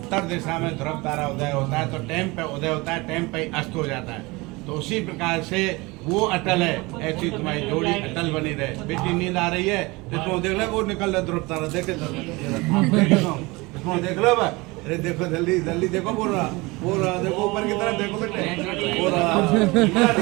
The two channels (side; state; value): left; quieter; 23.7 dB